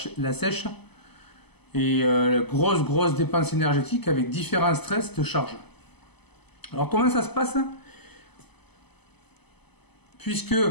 sèche et grosse dépense énergétique avec différents stress de charge. Alors comment ça se passe? Puisque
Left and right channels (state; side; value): late; right; 0.99 ms